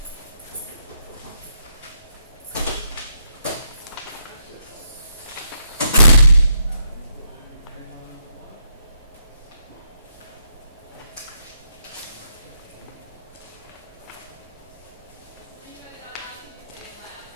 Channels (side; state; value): both; inverted; correlation -0.77